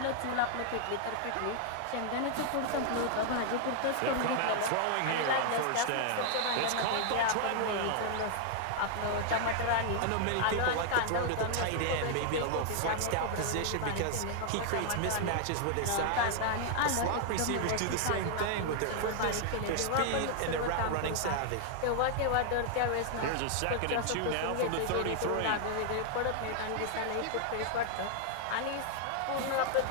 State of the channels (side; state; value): both; different; correlation 0.00